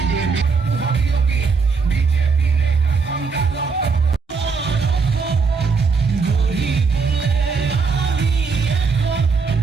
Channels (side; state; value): left; quieter; 4.9 dB